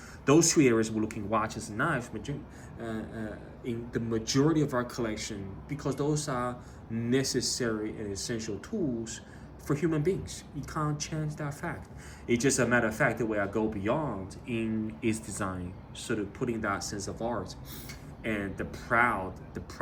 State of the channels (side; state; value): both; identical; correlation 1.00